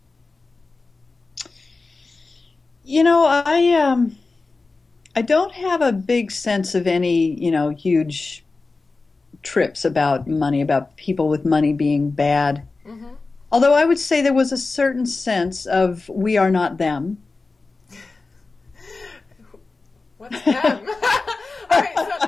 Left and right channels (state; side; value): quieter; right; 3.8 dB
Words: I don't have a big sense of any, huge trips about money, about people with money being bad. Mm-hmm. Although I would say there was a certain sense of we are not them. What's them? All right,